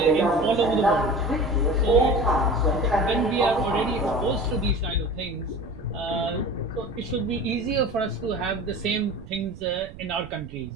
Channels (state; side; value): noise; right; rumble, 16 dB below the sound